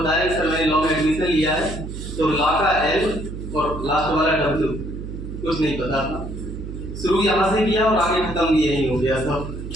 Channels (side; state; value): right; noise; hum, 8 dB below the sound